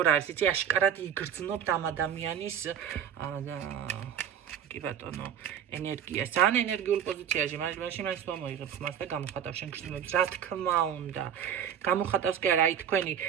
არის, იცი, აშკარად იგრძნობთ ამ ადამიანის კი ბატონო, ენერგიას, ძალიან ენერგიულ პოზიციაში, მაშინ მას მოიღებს მას და გამოხატავს შენ გრძნობებს, რა თქმა უნდა. გამოხატავს კი არა, აი თქვენი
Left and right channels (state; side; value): quieter; left; 8.9 dB